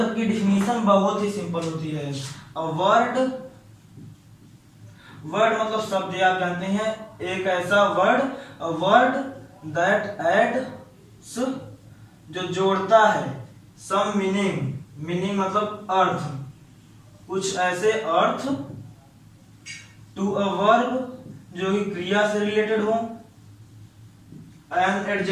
की डिफिनीशन बहुत ही सिंपल होती है। अ वर्ड मतलब शब्द, आप जानते हैं, एक ऐसा word, a word that adds, जो जोड़ता है, सम मीनिंग मतलब अर्थ, कुछ ऐसे अर्थ, टू अ वर्ब जो कि क्रिया से रिलेटेड हो, एन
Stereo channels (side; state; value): both; identical; correlation 1.00